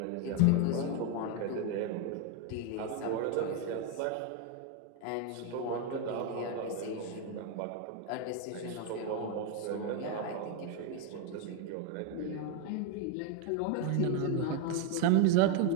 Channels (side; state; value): both; different; correlation 0.02